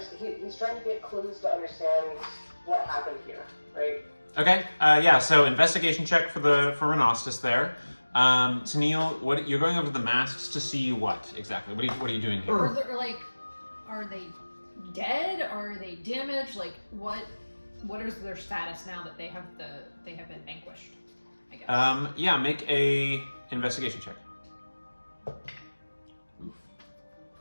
He's trying to get clues to understand what happened here, right? Okay, yeah. So investigation check for Renostus there. Tennille, what you're going over the masks to see what exactly? What are you doing here? Or are they dead? Are they damaged? Like what is their status now that they have been vanquished? I guess. Yeah, make a investigation check.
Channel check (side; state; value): both; inverted; correlation -1.00